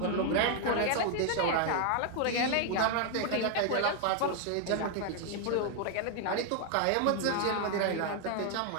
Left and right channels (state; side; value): different; both; correlation 0.00